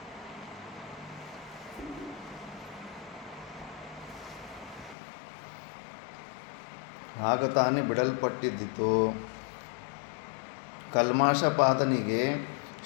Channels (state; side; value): drops out; right; at 5.0 s